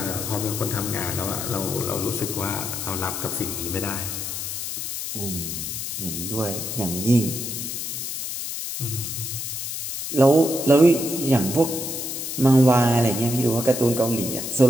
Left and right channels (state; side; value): noise; left; hiss, 5 dB below the sound